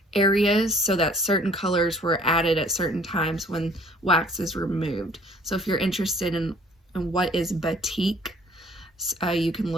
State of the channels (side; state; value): both; normal; correlation 0.55